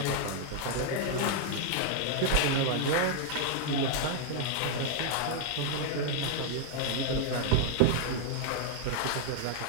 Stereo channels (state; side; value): different; both; correlation 0.00